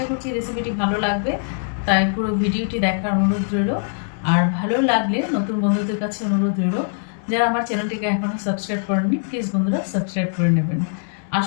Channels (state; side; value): silent; right; digital silence